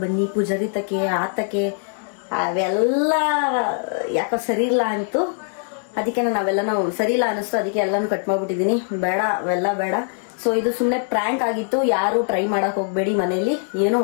ಬನ್ನಿ ಪೂಜಾರಿ ತಕ್ಕೆ ಆತಕ್ಕೆ ಅವೆಲ್ಲ ಯಾಕೋ ಸರಿ ಇಲ್ಲ ಅಂತು. ಅದಕ್ಕೆ ನಾವೆಲ್ಲನೂ ಸರಿ ಇಲ್ಲ ಅನಿಸ್ತು. ಅದಕ್ಕೆ ಎಲ್ಲಾನು ಕಟ್ ಮಾಡ್ಬಿಟ್ಟಿದೀನಿ. ಬೇಡ ಅವೆಲ್ಲ ಬೇಡ. ಸೊ ಇದು ಸುಮ್ನೆ ಪ್ರ್ಯಾಂಕ್ ಆಗಿತ್ತು. ಯಾರು ಟ್ರೈ ಮಾಡಕ್ ಹೋಗ್ಬೇಡಿ ಮನೇಲಿ ಏನು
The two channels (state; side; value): silent; right; 62 dB below the other